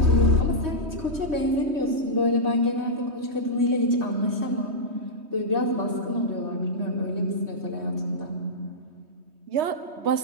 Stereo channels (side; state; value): left; late; 3.2 ms